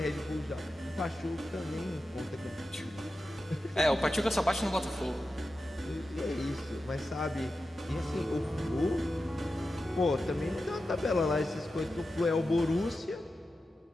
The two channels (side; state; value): both; normal; correlation 0.92